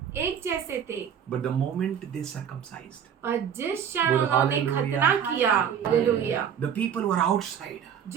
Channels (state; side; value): quieter; left; 8.4 dB